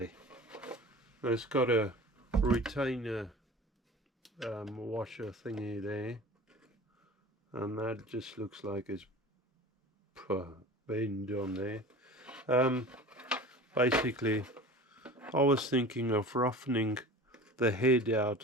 it's got a retainer washer thingy there, and that just looks like it's bend on there. Basically I was thinking of roughening the head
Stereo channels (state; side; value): normal; both; correlation 0.38